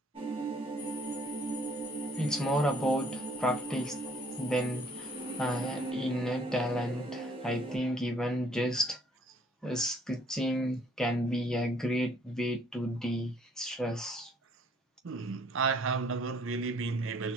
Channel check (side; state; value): both; normal; correlation 0.61